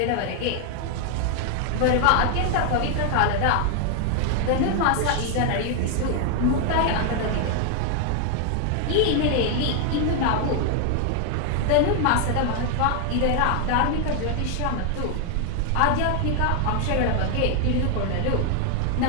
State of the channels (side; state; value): both; different; correlation 0.00